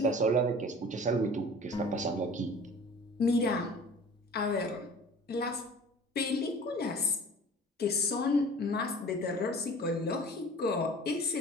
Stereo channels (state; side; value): normal; both; correlation 0.45